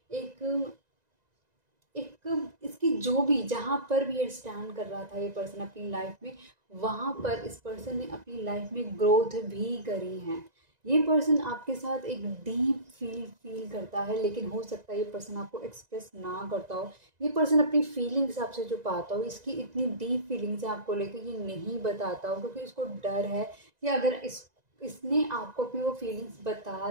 एक एक इसकी जो भी, जहाँ पर भी ये स्टैंड कर रहा था ये पर्सन अपनी लाइफ में, वहाँ पर इस पर्सन ने अपनी लाइफ में ग्रोथ भी करी है। ये पर्सन आपके साथ एक डीप फील करता है, लेकिन हो सकता है ये पर्सन आपको एक्सप्रेस ना करता हो। ये पर्सन अपनी फीलिंग्स आपसे छुपाता हो, इसकी इतनी डीप फीलिंग्स है आपको लेकर ये नहीं बताता हो, क्योंकि इसको डर है कि अगर इसने आपको अपनी वो फीलिंग्स बता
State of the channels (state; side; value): late; left; 2.0 ms